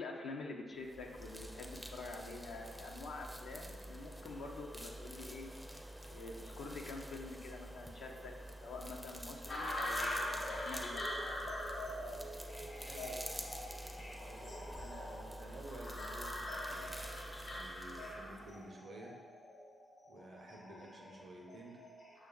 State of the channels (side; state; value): both; normal; correlation 0.81